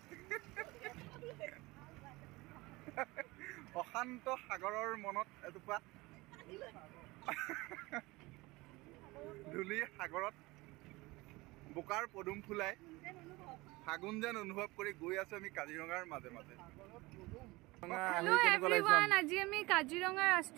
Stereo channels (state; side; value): quieter; left; 21.9 dB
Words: অশান্ত সাগৰৰ মনত এটুপা ধূলি সাগৰত বোকাৰ পদুম ফুলাই ফাগুন যেন অনুভৱ কৰি গৈ আছো আমি কাজিৰঙাৰ মাজে মাজে আজি আমি কাজিৰঙা